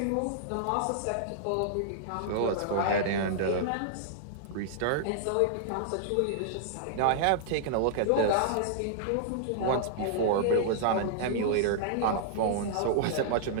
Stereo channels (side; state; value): both; different; correlation -0.01